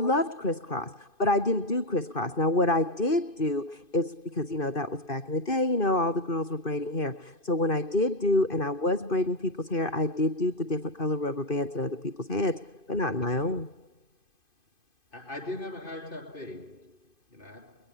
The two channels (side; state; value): right; late; 2.5 ms